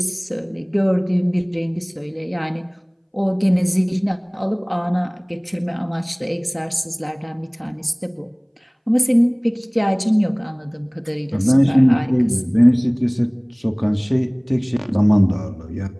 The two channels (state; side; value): identical; both; correlation 1.00